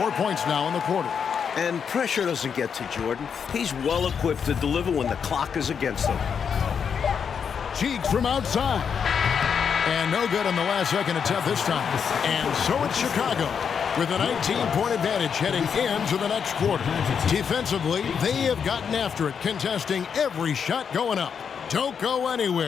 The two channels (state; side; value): quieter; right; 6.9 dB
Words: points now in the quarter. And pressure doesn't get to Jordan. He's well equipped to deliver when the clock is against him. Cheeks from outside. And no good on the last second attempt this time. And so it's Chicago with a 19-point advantage heading into the next quarter. Defensively, they have gotten after it, contesting every shot going up. Don't go